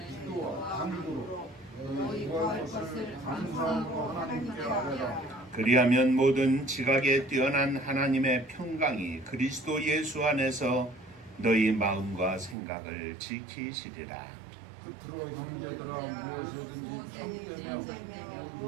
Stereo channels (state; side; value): drops out; left; at 12.6 s